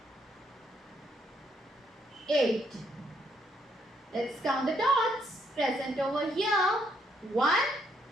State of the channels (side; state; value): both; normal; correlation 0.72